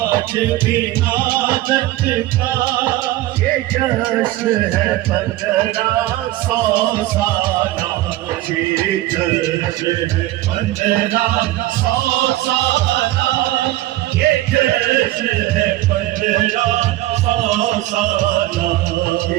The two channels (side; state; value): left; quieter; 16.2 dB